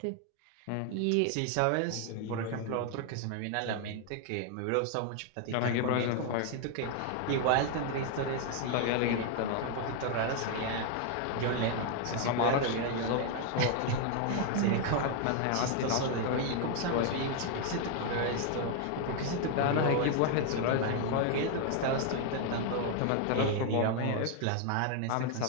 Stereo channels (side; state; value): both; different; correlation 0.01